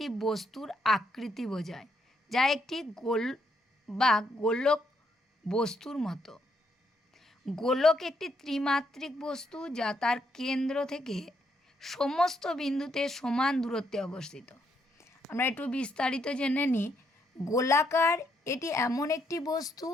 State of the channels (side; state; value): both; normal; correlation 0.75